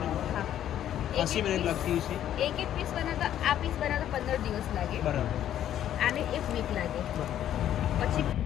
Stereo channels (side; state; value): right; quieter; 11.1 dB